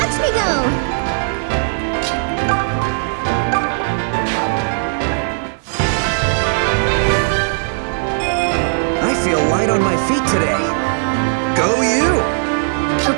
me go! I feel light on my feet today. Go you!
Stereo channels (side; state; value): left; silent; digital silence